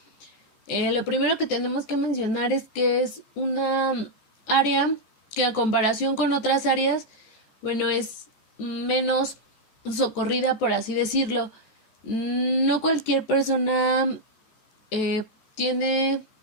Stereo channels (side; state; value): right; late; 14 ms